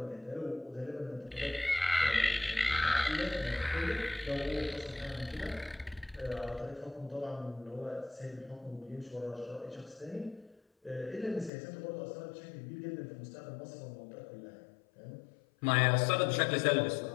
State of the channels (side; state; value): right; drops out; at 11.5 s